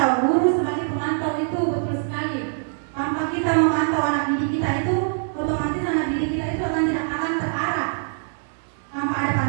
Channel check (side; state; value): left; silent; digital silence